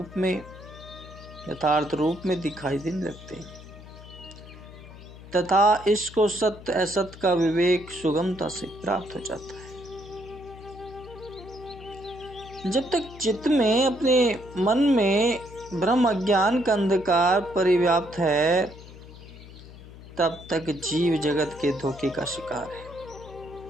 रूप में दिखाई देने लगते हैं तथा इसको सत्य असत्य का विवेक सुगमता से प्राप्त हो जाता है। जब तक चित्त में, अपने मन में ब्रह्म अज्ञान का अंधकार परिव्याप्त है, तब तक जीव जगत के धोखे का शिकार है।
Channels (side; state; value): left; noise; hum, 17 dB below the sound